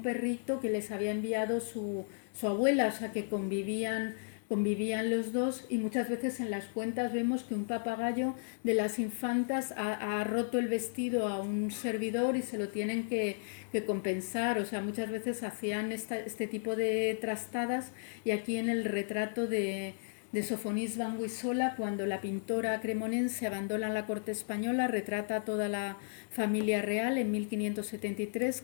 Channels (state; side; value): silent; right; digital silence